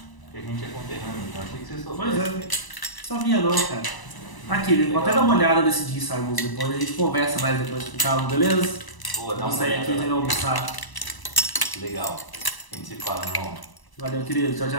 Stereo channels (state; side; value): late; right; 1.0 ms